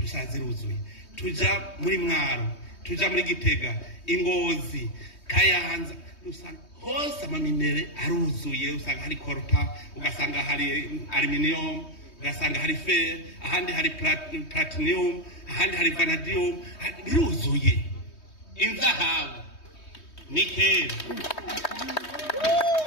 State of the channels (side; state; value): right; late; 3.2 ms